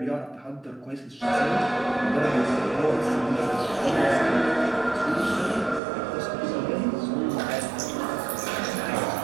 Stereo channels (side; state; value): left; drops out; at 5.8 s